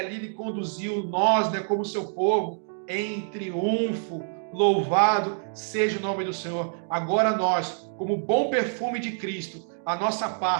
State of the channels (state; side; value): silent; left; digital silence